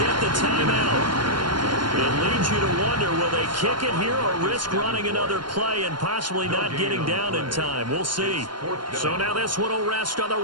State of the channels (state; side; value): late; left; 0.71 ms